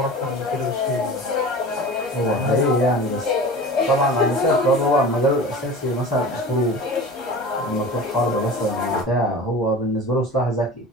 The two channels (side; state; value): both; normal; correlation 0.36